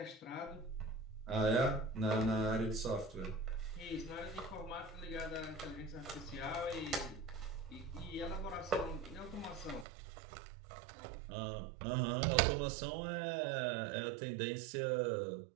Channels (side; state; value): left; drops out; at 9.9 s